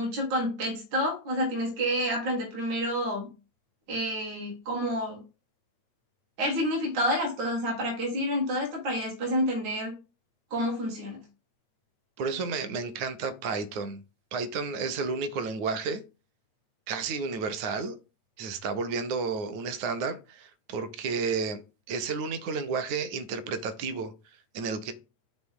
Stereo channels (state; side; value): late; left; 9.4 ms